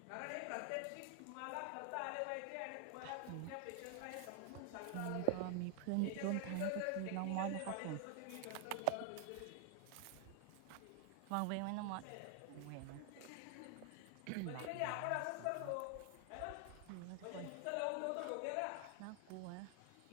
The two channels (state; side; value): different; both; correlation 0.00